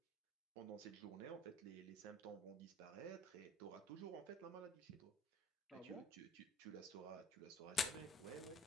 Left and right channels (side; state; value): both; normal; correlation 0.53